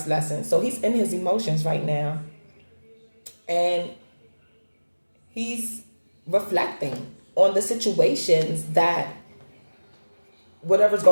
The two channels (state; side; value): inverted; both; correlation -1.00